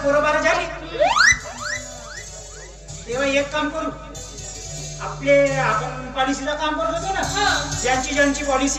पोरं बारा झाली तेव्हा एक काम करू आपण पॉलिसीचं काम करत होतो ना ज्यांची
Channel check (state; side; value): identical; both; correlation 1.00